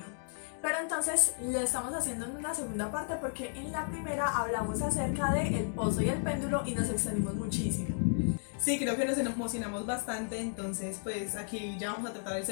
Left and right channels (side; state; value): right; silent; digital silence